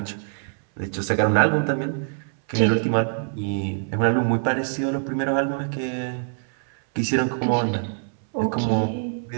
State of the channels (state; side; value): silent; left; 62 dB below the other